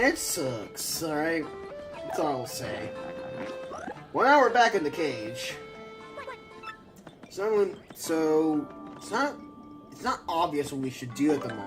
it sucks, alright? That's all I'll say. Well, now we're back in the cage. So it's not obvious what we should do at the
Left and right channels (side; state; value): both; identical; correlation 1.00